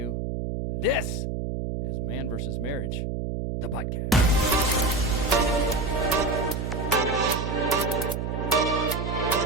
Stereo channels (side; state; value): right; noise; hum, 3 dB below the sound